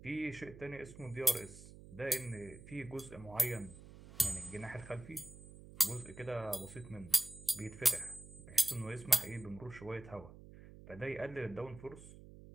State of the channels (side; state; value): right; noise; hum, 17 dB below the sound